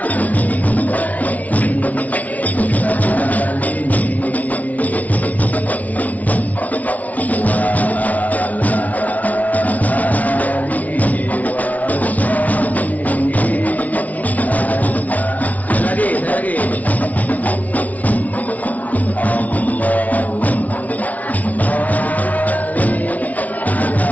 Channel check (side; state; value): right; late; 0.072 ms